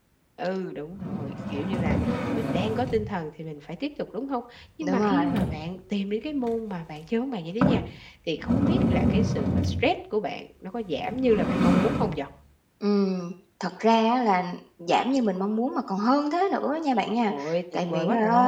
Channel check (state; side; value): identical; both; correlation 1.00